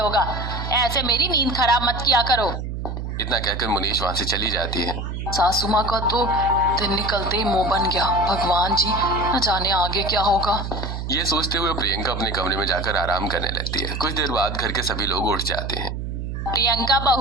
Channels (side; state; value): right; noise; hum, 5 dB below the sound